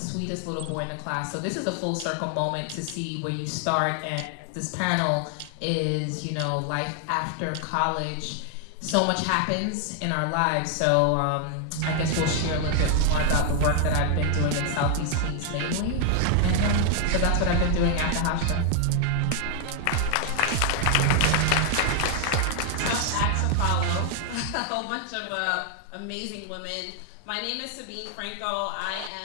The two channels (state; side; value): different; both; correlation 0.00